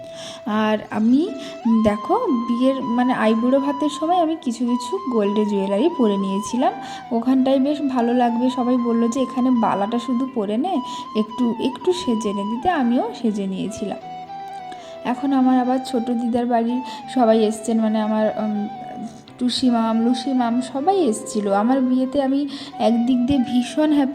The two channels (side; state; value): both; identical; correlation 1.00